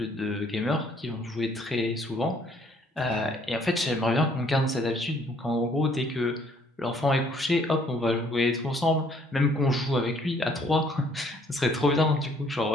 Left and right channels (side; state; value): both; normal; correlation 0.63